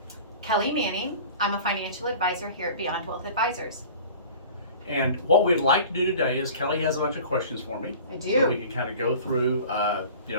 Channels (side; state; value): both; inverted; correlation -0.42